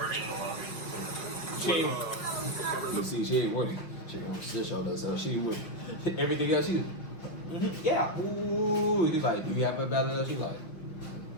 You see, she ain't working. She don't sit on us, so she would everything else. She, yeah. Ooh, he's like, do you have a valid? She's like,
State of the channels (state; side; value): late; right; 5.6 ms